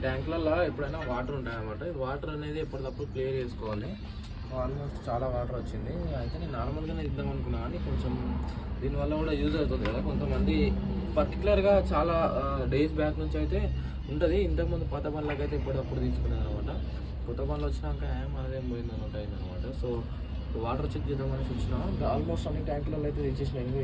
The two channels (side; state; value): both; identical; correlation 1.00